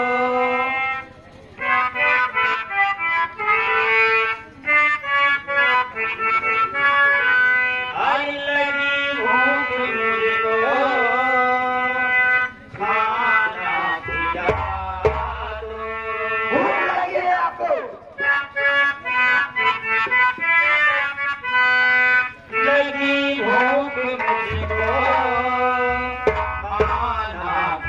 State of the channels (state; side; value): identical; both; correlation 1.00